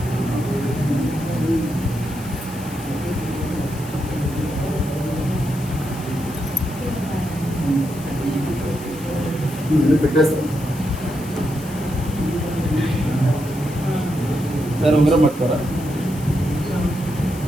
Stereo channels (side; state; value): left; noise; hiss, 17 dB below the sound